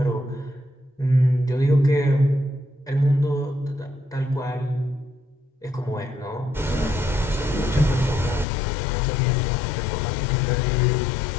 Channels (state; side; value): drops out; right; at 8.5 s